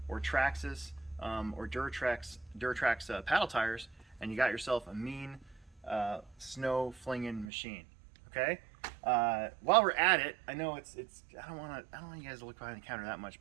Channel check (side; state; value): left; drops out; at 7.5 s